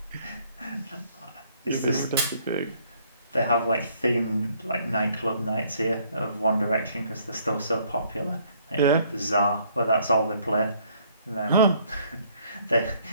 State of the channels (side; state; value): both; inverted; correlation -0.64